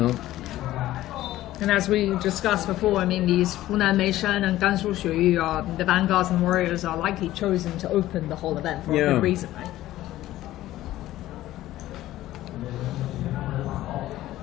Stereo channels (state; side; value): quieter; right; 15.0 dB